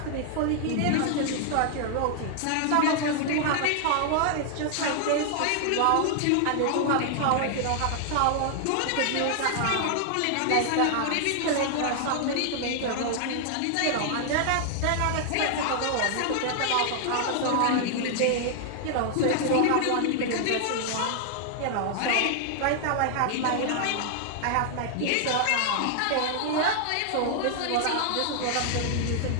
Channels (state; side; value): different; both; correlation 0.00